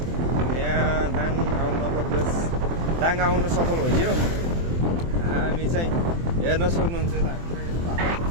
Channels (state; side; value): late; left; 24 ms